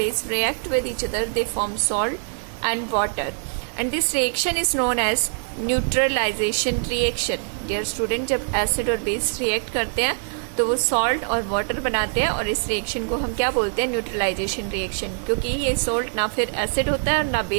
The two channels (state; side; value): silent; left; digital silence